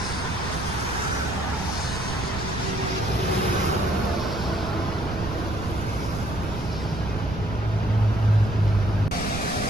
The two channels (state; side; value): noise; right; rumble, 8 dB below the sound